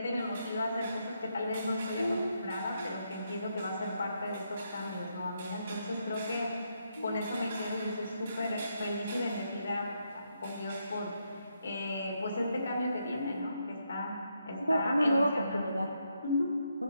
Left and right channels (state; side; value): inverted; both; correlation -0.79